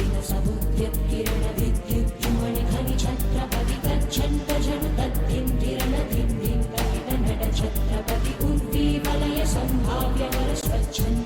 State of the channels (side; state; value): both; identical; correlation 1.00